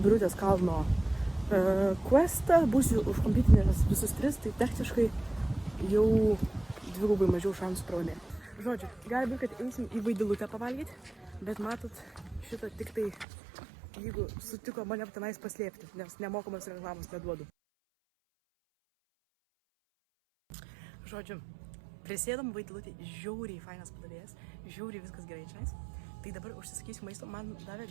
kalno questą, būsiu užkompitinęs visus 3, tai techniškai jau dvigubai mažiau šansų pralaimėti. Žodžiu, gali būti, kad eisim į Vaidilutę pavalgyti, bet matot, šitą tik tai, jeigu sutiko mane tenais paslėpti, nes nemokamas reklamos neduodu. Žodžiu, prisėdam Vaidilutį, žiauriai fainas padavėjas, žiauriai viskas gerai čia. Tai dabar užsisakysiu maisto, man davė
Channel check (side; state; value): left; drops out; at 13.2 s